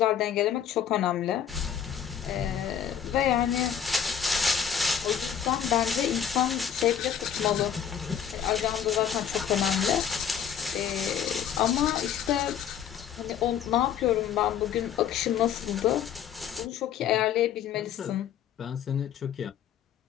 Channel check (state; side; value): quieter; right; 8.7 dB